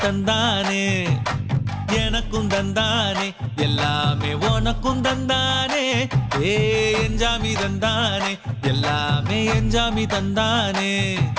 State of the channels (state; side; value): identical; both; correlation 1.00